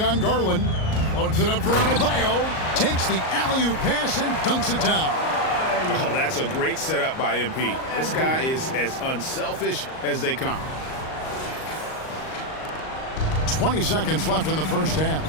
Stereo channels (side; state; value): right; late; 38 ms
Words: on Garland. Loads it up for Adebayo. Takes the alley-oop pass and dunks it down. Oh, that's a great setup by MP. This guy is as unselfish as they come. 20 seconds left in the first half.